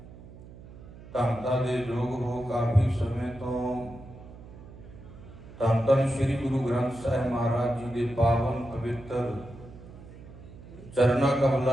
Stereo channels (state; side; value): noise; right; hum, 17 dB below the sound